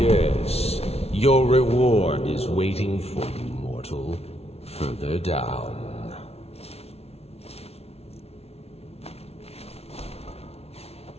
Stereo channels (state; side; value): late; right; 0.30 ms